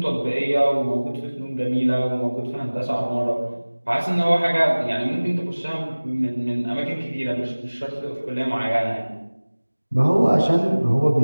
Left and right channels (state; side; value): inverted; both; correlation -1.00